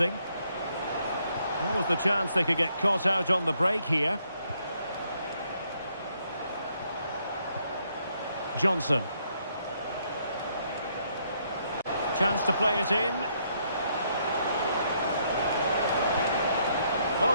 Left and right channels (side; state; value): both; inverted; correlation -0.72